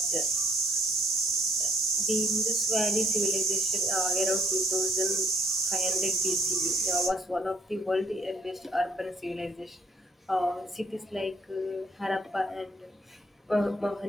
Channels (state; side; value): normal; both; correlation 0.66